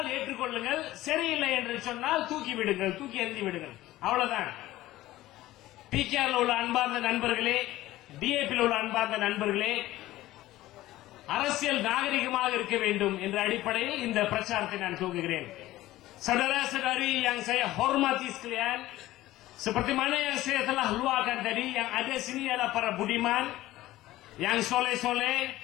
ஏற்றுக்கொள்ளுங்கள், சரியில்லை என்று சொன்னால் தூக்கி விடுங்கள், தூக்கி எறிந்து விடுங்கள். அவ்வளவுதான். PKR உள்ள அன்பார்ந்த நண்பர்களே, DAP உள்ள அன்பார்ந்த நண்பர்களே, அரசியல் நாகரிகமாக இருக்க வேண்டும் என்ற அடிப்படையில் இந்த பிரச்சாரத்தை நான் துவங்குகிறேன். Saudara-saudari yang saya hormati sekalian, seperti mana yang saya telah luahkan tadi, yang ada sini adalah para budiman yang soleh-soleh.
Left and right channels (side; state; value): right; quieter; 16.1 dB